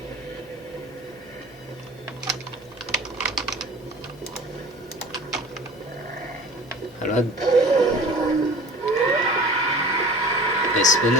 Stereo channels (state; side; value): noise; right; hum, 28 dB below the sound